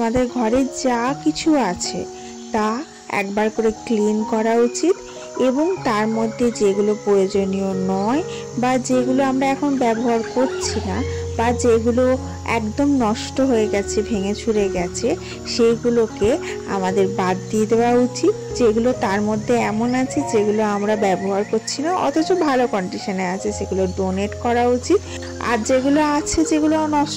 ঘরে যা কিছু আছে তা একবার করে ক্লিন করা উচিত এবং তার মধ্যে যেগুলো প্রয়োজনীয় নয় বা যেগুলো আমরা এখন ব্যবহার করছি না বা যেগুলো একদম নষ্ট হয়ে গেছে, ভেঙে চুরে গেছে, সেইগুলোকে আমাদের বাদ দিয়ে দেওয়া উচিত। যেগুলো তার মধ্যে এমন আছে যেগুলো আমরা ব্যবহার করছি না অথচ ভালো কন্ডিশনে আছে, সেগুলো ডোনেট করা উচিত। আর যেগুলো আছে যেগুলো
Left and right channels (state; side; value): identical; both; correlation 1.00